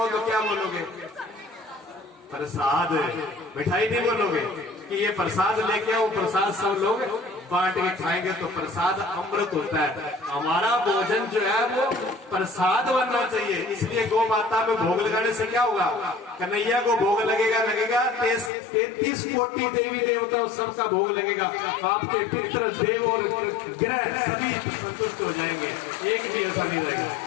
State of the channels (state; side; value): drops out; right; at 18.5 s